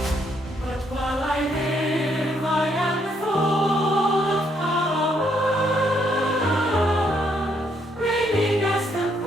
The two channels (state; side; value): normal; both; correlation 0.72